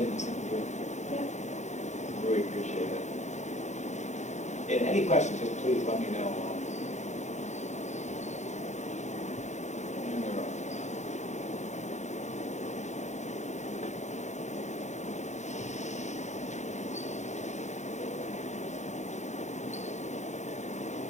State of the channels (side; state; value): right; late; 0.34 ms